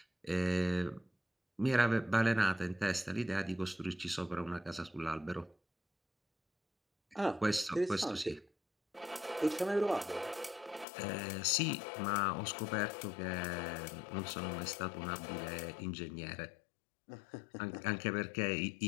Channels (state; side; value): drops out; right; at 10.9 s